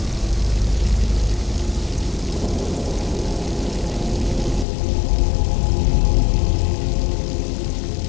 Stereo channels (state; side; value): drops out; right; at 4.7 s